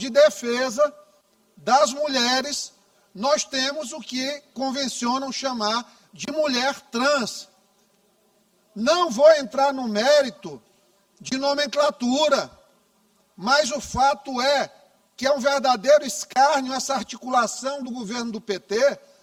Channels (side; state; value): both; identical; correlation 1.00